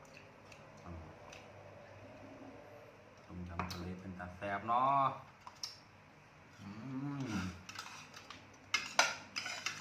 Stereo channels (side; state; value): both; identical; correlation 1.00